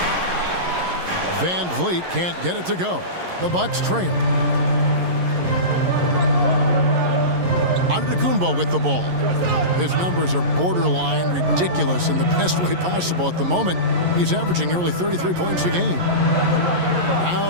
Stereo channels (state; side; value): late; left; 11 ms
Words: Van Vliet can't get it to go. The Bucks trail. Antetokounmpo with the ball. His numbers are borderline ridiculous in the best way possible at the moment. He's averaging nearly 33 points a game.